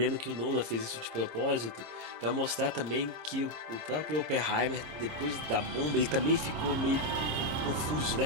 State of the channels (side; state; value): left; late; 26 ms